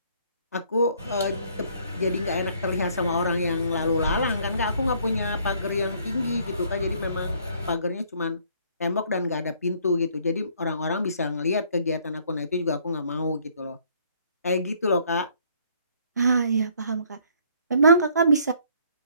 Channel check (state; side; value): inverted; both; correlation -0.62